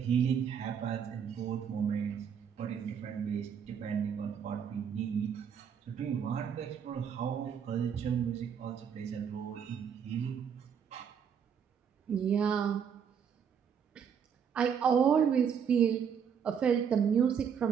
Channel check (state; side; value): quieter; left; 7.5 dB